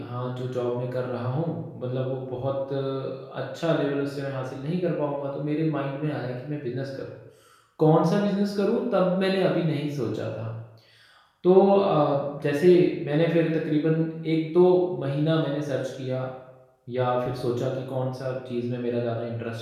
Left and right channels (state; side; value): identical; both; correlation 1.00